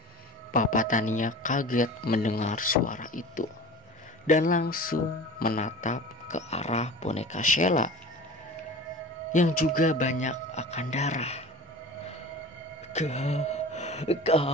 Papa Tania kaget mendengar suara itu dan langsung menatap ke arah boneka Sheila yang juga banyak akan darah.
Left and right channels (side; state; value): both; normal; correlation 0.37